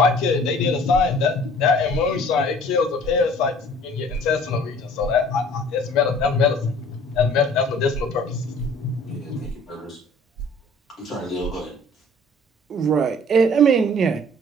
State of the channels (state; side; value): normal; both; correlation 0.51